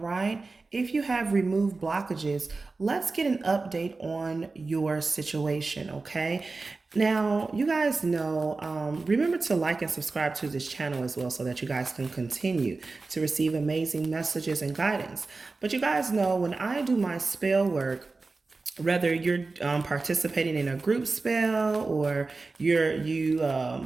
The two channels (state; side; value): quieter; left; 3.8 dB